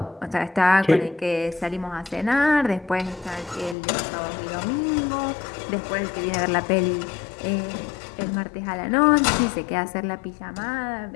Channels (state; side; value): drops out; right; at 3.8 s